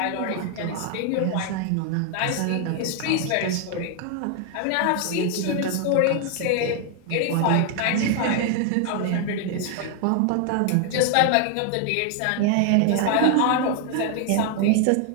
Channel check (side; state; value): both; different; correlation 0.00